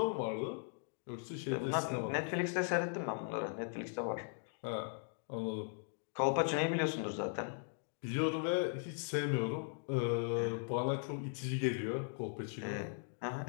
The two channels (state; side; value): silent; right; digital silence